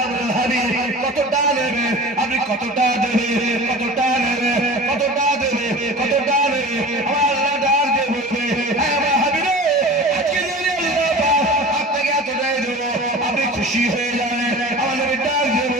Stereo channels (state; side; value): normal; both; correlation 0.37